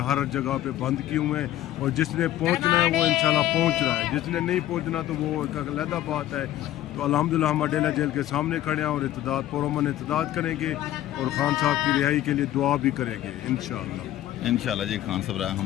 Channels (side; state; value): right; quieter; 13.6 dB